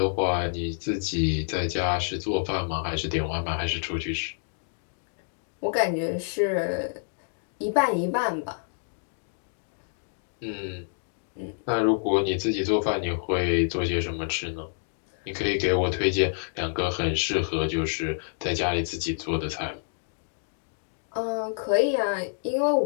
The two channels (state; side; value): silent; right; digital silence